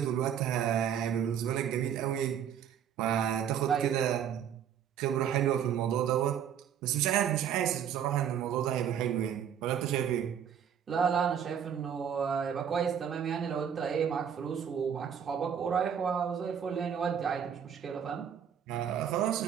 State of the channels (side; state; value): left; quieter; 8.6 dB